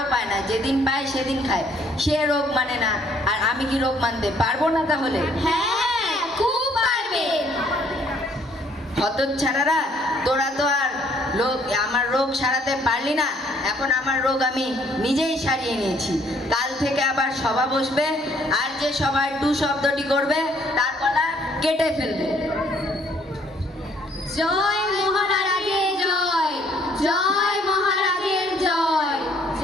পায় না, যেদিন পায় সেদিন খায়। সে রোগ মানে না, আর আমি কি রোগ মানতে পারবো না তাহলে? হ্যাঁ, খুব পারবে। হতচ্ছাড়ারা, তোরা তো আর আমার রোগ সারাতে পারলি না। এখন আমার রোগ আমি নিজেই সারিয়ে নিয়েছি। কাল থেকে আবার সভা বসবে, আর যে সভায় টু শব্দটি করবে তার গলা কেটে ফেলবে। জয় মহারাজের জয়, জয় মহারাজের জয়,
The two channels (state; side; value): normal; both; correlation 0.63